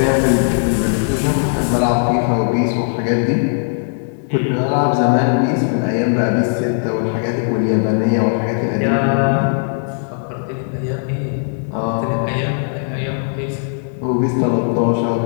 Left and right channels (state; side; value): silent; right; 64 dB below the other